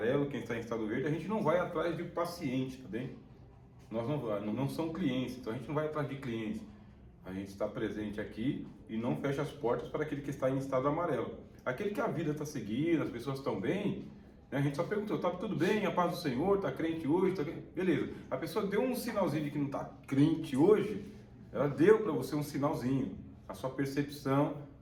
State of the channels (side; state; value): both; identical; correlation 1.00